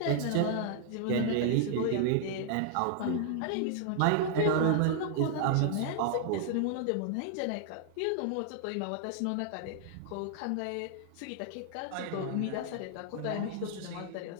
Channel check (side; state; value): both; different; correlation -0.01